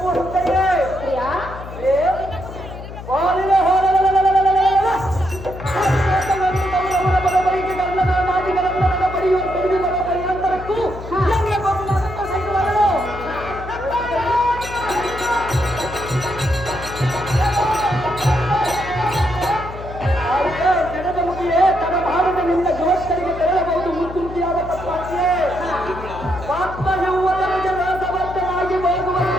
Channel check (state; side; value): noise; left; hum, 12 dB below the sound